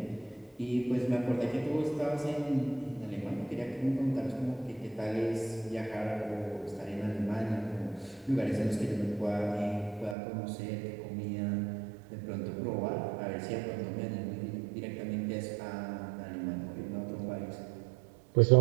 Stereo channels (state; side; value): drops out; left; at 10.2 s